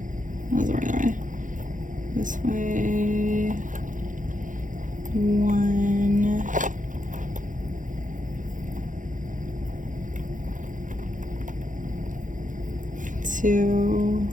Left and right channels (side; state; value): left; late; 0.37 ms